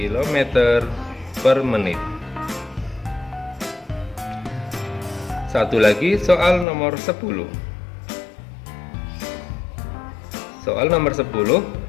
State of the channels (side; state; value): right; drops out; at 6.7 s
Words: per menit. Satu lagi soal nomor 10. Soal nomor 10,